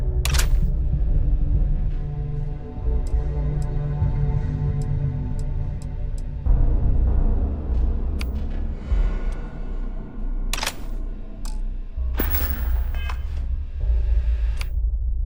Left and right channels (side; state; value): both; identical; correlation 1.00